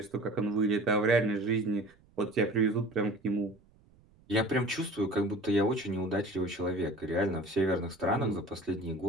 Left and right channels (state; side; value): noise; right; rumble, 30 dB below the sound